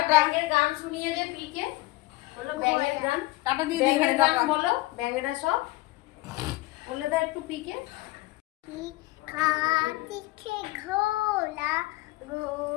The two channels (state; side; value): quieter; right; 20.3 dB